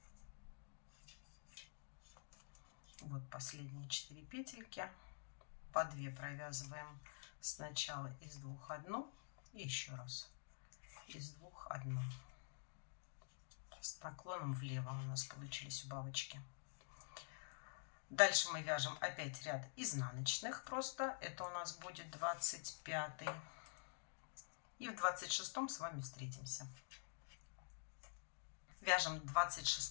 Вот последние 4 петельки, по 2 провязываем сначала из 2 одну и еще раз из 2 одну. С наклоном влево у нас получились убавочки. Дальше мы вяжем опять ряд изнаночных просто. Это у нас будет 25. И в 26 с вами встретимся. Вяжем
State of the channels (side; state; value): right; silent; digital silence